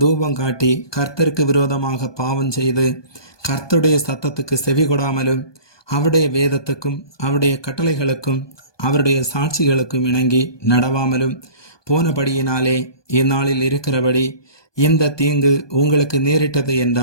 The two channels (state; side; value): late; right; 1.2 ms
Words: காட்டி கர்த்தருக்கு விரோதமாக பாவம் செய்து கர்த்தருடைய சத்தத்துக்கு செவி கொடாமலும் அவருடைய வேதத்துக்கும் அவருடைய கட்டளைகளுக்கும் அவருடைய சாட்சிகளுக்கும் இணங்கி நடவாமலும் போனபடியினாலே இந்நாளில் இருக்கிறபடி இந்த தீங்கு உங்களுக்கு நேரிட்டது